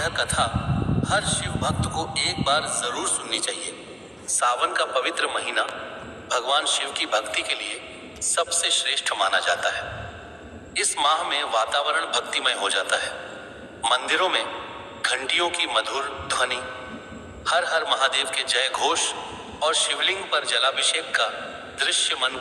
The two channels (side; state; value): both; identical; correlation 1.00